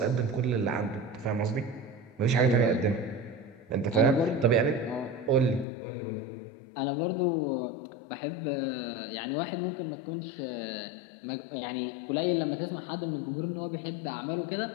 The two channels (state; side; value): drops out; right; at 5.7 s